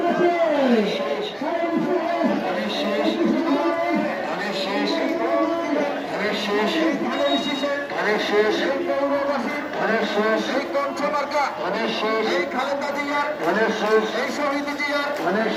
এই শহীদ জিয়ার,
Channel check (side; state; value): both; identical; correlation 1.00